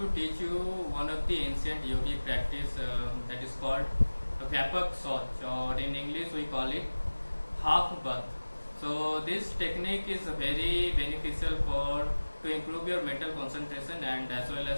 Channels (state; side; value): inverted; both; correlation -1.00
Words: teach you one of the ancient yogic practice that is called Vyapak Soch, or in English we call it half bath. So this technique is very beneficial for to improve your mental concentration and as well